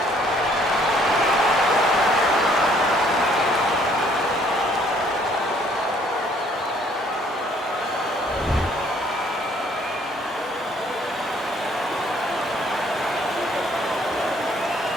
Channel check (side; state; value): both; normal; correlation 0.62